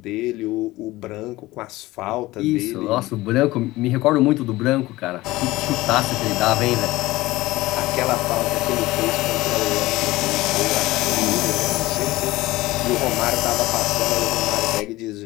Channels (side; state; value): right; quieter; 18.6 dB